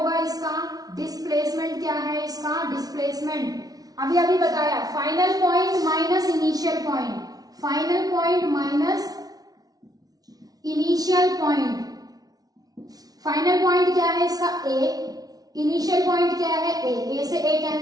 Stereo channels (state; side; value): late; left; 0.18 ms